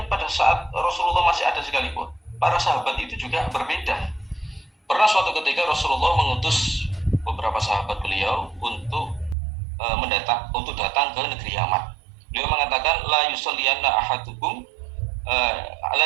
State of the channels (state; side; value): drops out; left; at 9.3 s